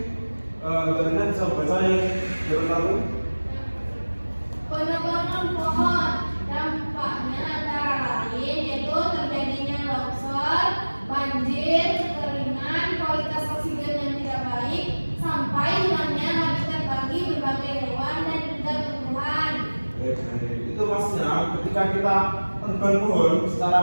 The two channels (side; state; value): both; inverted; correlation -1.00